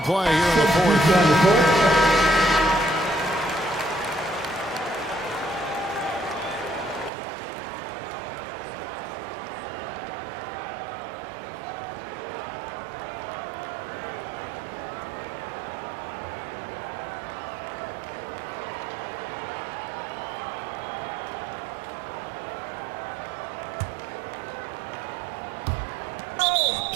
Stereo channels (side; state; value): left; drops out; at 7.1 s